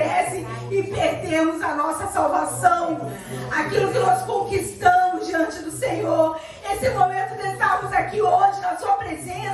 e perdermos a nossa salvação. Aquilo que nós conquistamos diante do Senhor. Esse momento de estarmos aqui hoje na sua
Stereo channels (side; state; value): both; identical; correlation 1.00